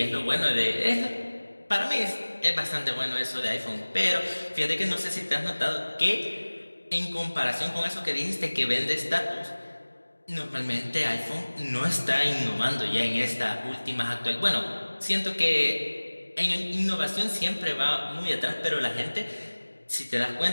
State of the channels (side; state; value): both; inverted; correlation -1.00